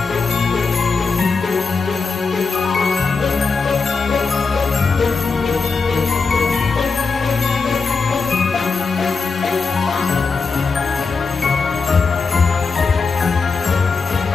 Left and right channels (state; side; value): quieter; right; 4.7 dB